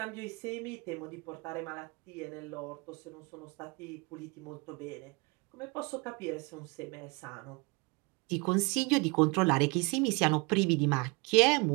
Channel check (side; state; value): left; quieter; 29.3 dB